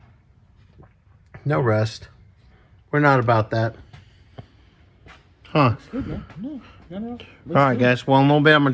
No rust. We're not about that. Huh. Good, man. No. All right, guys. Well, in a little bit, I'm going to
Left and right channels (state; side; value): identical; both; correlation 1.00